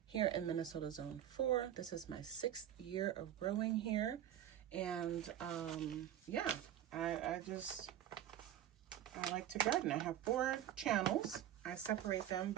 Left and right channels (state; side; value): quieter; left; 11.1 dB